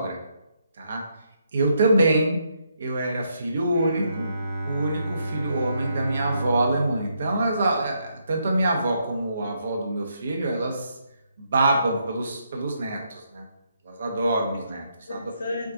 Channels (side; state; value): both; inverted; correlation -0.77